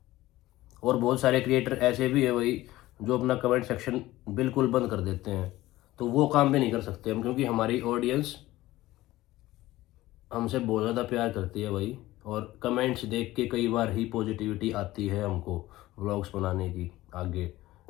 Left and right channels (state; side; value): quieter; right; 16.9 dB